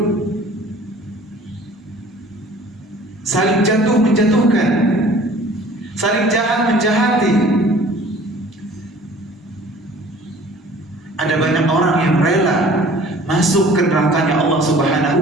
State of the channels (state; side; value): normal; both; correlation 0.49